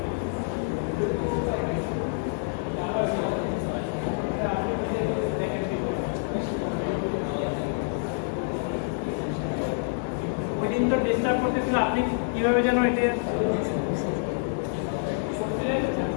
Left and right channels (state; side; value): silent; right; digital silence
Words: ওই দিন তো ডিস্টার্ব করতেছিল, আপনি কিভাবে যেন এটা